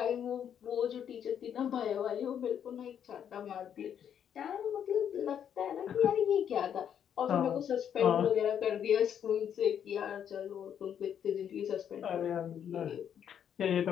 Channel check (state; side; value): quieter; right; 8.9 dB